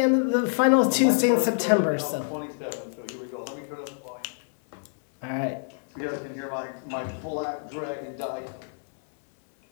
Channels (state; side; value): silent; right; 60 dB below the other